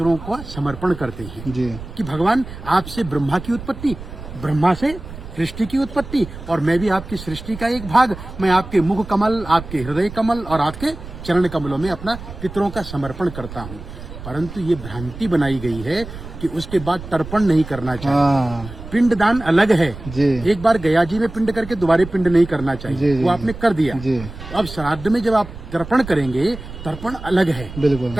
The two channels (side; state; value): right; noise; rumble, 13 dB below the sound